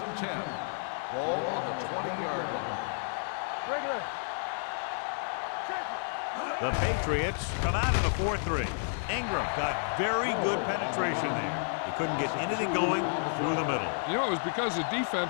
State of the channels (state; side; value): silent; right; digital silence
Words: 10. Ball on the 20-yard line. Regular. The Patriots come out in a 4-3. Ingram got very good penetration there. He couldn't get anything going through the middle. You know, it was because the